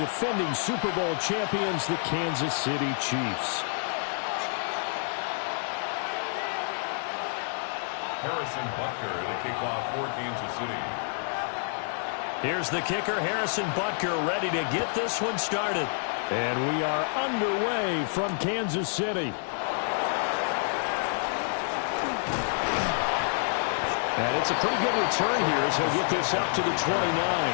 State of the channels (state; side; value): silent; right; 59 dB below the other